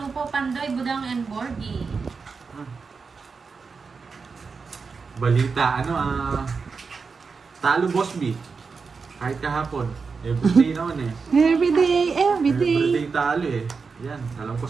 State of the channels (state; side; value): quieter; left; 5.0 dB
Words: po, Pandoy, Budang, and Borgie. Balita, talo Bosby. Kahit kahapon. Everyday naman eh. Every day, every day. Everyday talo eh. Yan, alam ko